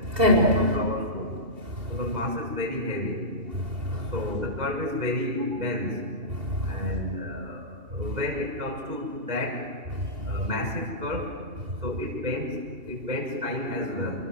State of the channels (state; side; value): late; left; 2.8 ms